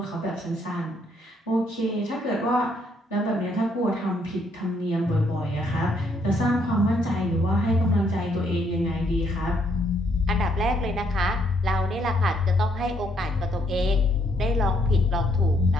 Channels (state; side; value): normal; both; correlation 0.70